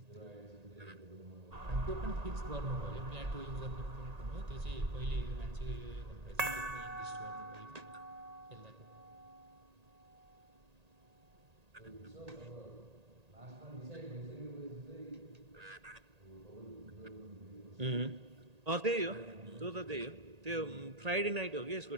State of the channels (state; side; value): late; left; 1.8 ms